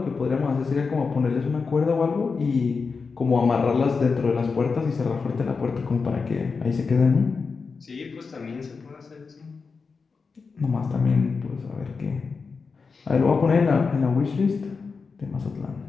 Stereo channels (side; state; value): right; quieter; 4.8 dB